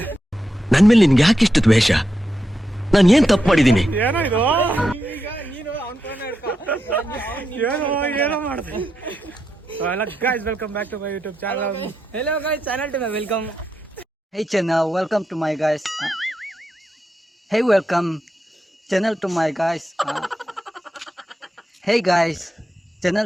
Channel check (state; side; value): normal; both; correlation 0.85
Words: ನನ್ ಮೇಲೆ ನಿನ್ಗೆ ಯಾಕೆ ಇಷ್ಟು ದ್ವೇಷ? ನಾನು ಏನ್ ತಪ್ಪು ಮಾಡಿದೀನಿ? ಏನೋ ಇದು ಏನೋ ಮಾಡಿದೆ. Hello guys, welcome back to my YouTube channel. Hello guys, channel to my welcome. Hey channel, welcome to my guys. Hey, welcome channel to my guys. Hey guys,